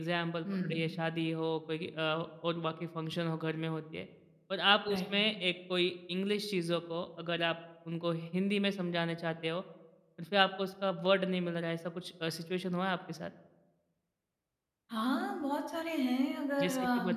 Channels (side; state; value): both; identical; correlation 1.00